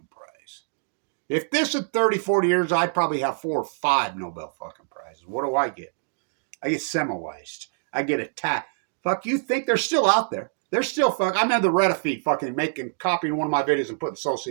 prize. If this is 30, 40 years, I'd probably have 4 or 5 Nobel fucking prizes. What do I get? I get Semmelweis. I get attacked. Fuck, you think they're still out there? They're still I'm in the Reddit feed fucking copying one of my videos and putting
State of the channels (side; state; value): left; silent; digital silence